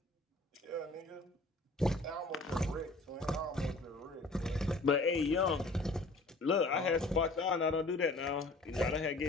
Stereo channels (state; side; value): quieter; right; 3.0 dB